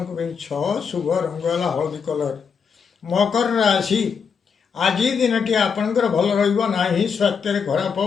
ପାଇଁ 6, ଶୁଭ ରଙ୍ଗ ହେଲା ହଳଦୀ କଲର। ମକର ରାଶି, ଆଜି ଦିନଟି ଆପଣଙ୍କର ଭଲ ରହିବ ନାହିଁ। ସ୍ୱାସ୍ଥ୍ୟରେ ଖରାପ,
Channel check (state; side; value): quieter; right; 6.2 dB